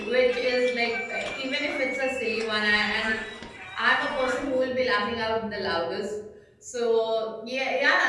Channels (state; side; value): identical; both; correlation 1.00